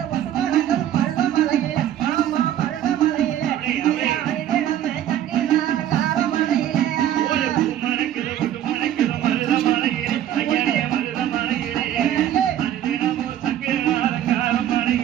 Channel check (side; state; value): left; quieter; 11.3 dB